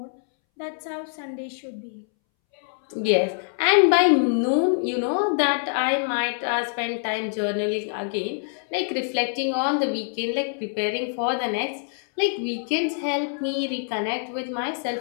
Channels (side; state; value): right; silent; 62 dB below the other